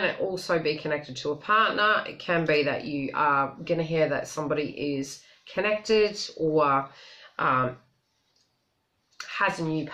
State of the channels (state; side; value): identical; both; correlation 1.00